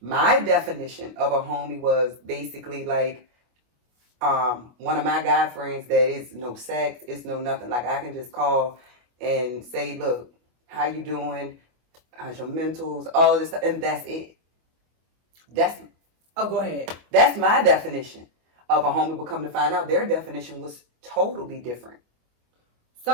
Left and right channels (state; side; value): late; left; 25 ms